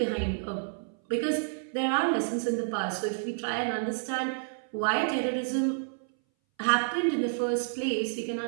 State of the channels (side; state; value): left; silent; 58 dB below the other